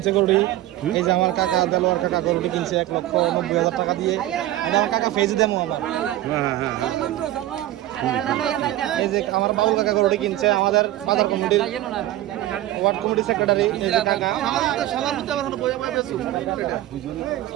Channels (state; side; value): quieter; left; 14.8 dB